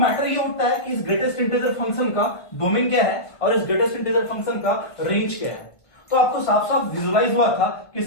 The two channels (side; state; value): right; late; 1.5 ms